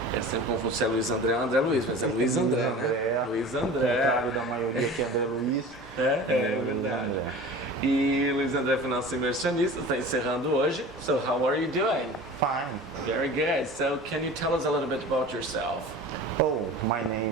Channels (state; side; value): normal; both; correlation 0.38